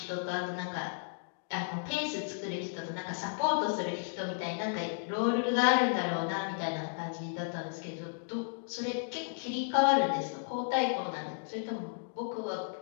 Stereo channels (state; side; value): silent; right; digital silence